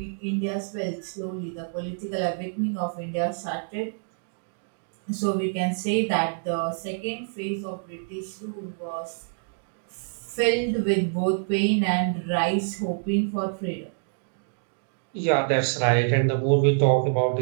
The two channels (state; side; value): silent; left; digital silence